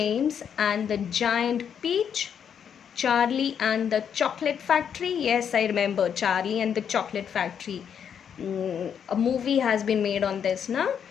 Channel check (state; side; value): quieter; right; 8.0 dB